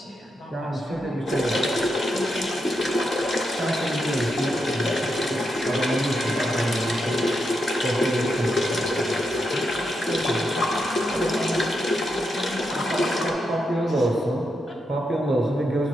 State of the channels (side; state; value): both; normal; correlation 0.84